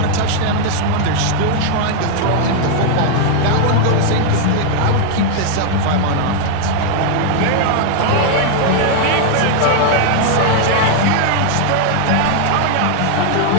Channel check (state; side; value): different; both; correlation 0.00